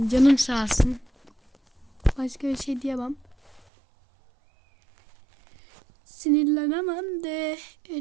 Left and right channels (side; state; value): left; drops out; at 3.6 s